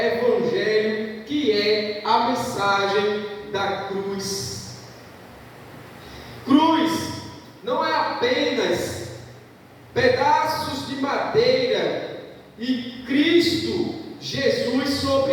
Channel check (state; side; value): identical; both; correlation 1.00